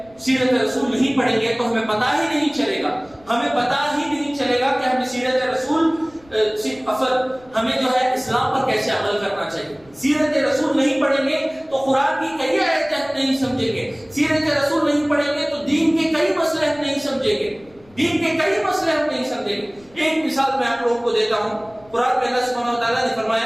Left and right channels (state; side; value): noise; left; rumble, 28 dB below the sound